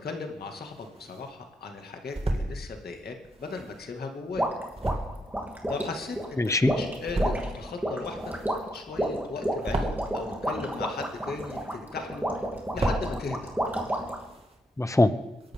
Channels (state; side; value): normal; both; correlation 0.79